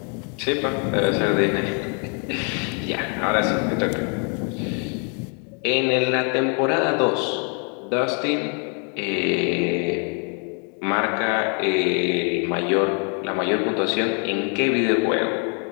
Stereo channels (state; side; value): quieter; right; 39.6 dB